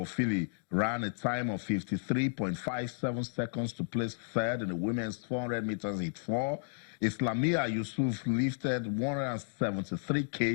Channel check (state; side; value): silent; right; digital silence